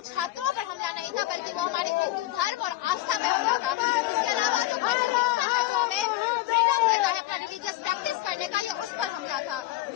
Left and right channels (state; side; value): quieter; right; 15.8 dB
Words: छात्रों पर हमला नहीं था, बल्कि वो हमारे हिंदू धर्म और आस्था पे हमला था। इसके अलावा जो कॉन्स्टिट्यूशन है, जो हमें फ्रीडम देता है अपना रिलीजियस प्रैक्टिस करने का, ये उस पर हमला था।